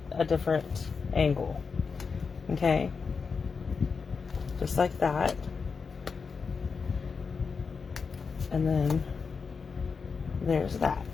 a different angle. Okay, just like that. And then there's that.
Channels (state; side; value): quieter; right; 5.3 dB